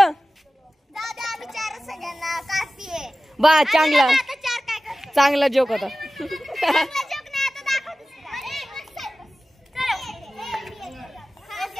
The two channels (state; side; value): normal; both; correlation 0.96